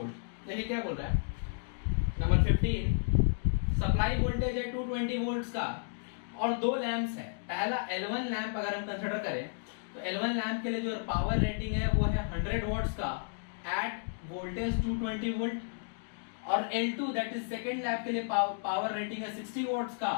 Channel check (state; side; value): silent; right; digital silence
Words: देखिए क्या बोल रहा है, number 15, supply voltage है 220 volts का और दो lamps हैं। पहला L1 लैंप अगर हम कंसीडर करें तो L1 लैंप के लिए जो पावर रेटिंग है वो है 100 वॉट्स का एट वोल्टेज 220 वोल्ट, और L2 that is second lamp के लिए पावर रेटिंग है 60 वॉट्स